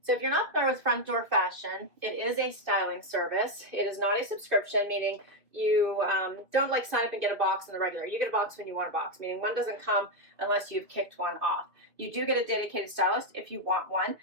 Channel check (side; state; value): left; late; 2.5 ms